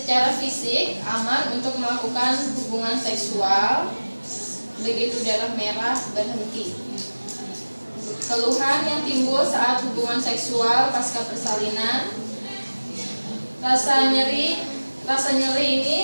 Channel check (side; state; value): both; inverted; correlation -1.00